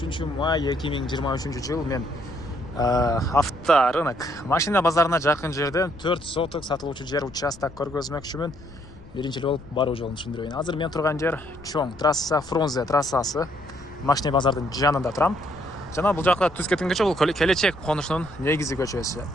май 2023 жыл мен авторынок машина базарына жақын жерден 4 сотық сатылуучу жер участок көргөзмөкчүмүн. Биринчи болуп баруу жолун түшүндүрөйүн. Азыр мен турган жер чоң трасса, Фрунзе трассасы. Машина базардын жанында турам. Жана бул жакта түз кеткен көчө, бул келечек конушунун негизи көчөсү.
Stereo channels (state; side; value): noise; left; rumble, 21 dB below the sound